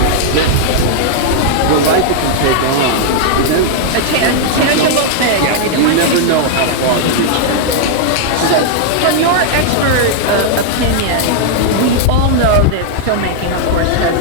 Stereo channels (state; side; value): different; both; correlation -0.01